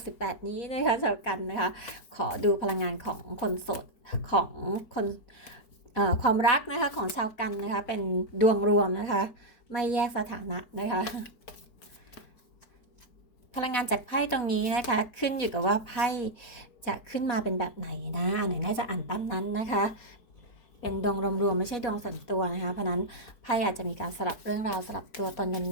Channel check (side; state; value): right; late; 4.1 ms